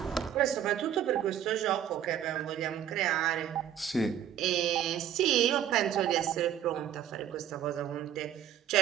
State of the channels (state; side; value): quieter; left; 10.2 dB